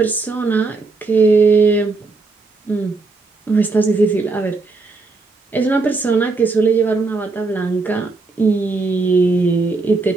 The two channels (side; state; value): left; quieter; 3.8 dB